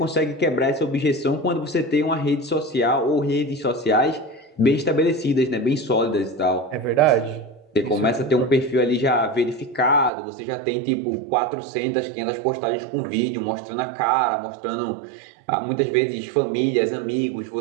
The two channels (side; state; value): left; drops out; at 10.1 s